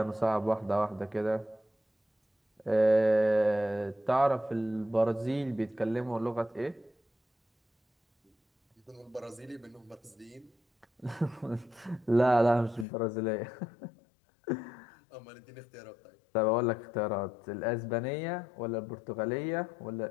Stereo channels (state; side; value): drops out; right; at 12.9 s